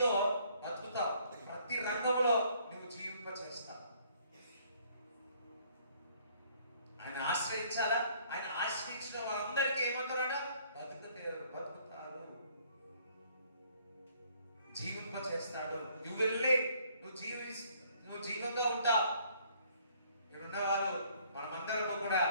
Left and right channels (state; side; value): inverted; both; correlation -0.62